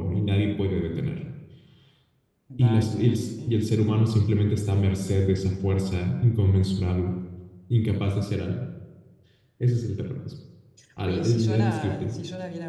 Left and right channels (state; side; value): identical; both; correlation 1.00